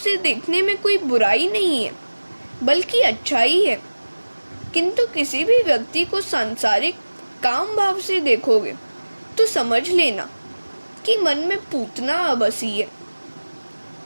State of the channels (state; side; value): inverted; both; correlation -1.00